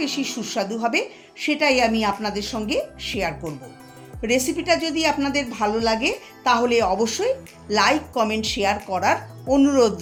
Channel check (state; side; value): identical; both; correlation 1.00